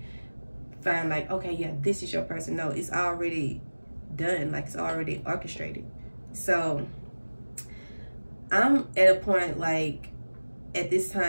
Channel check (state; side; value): inverted; both; correlation -1.00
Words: find like, okay, yeah, this is your person. No, it's already done. Like it's already orchestrated. So I'm at a point like at this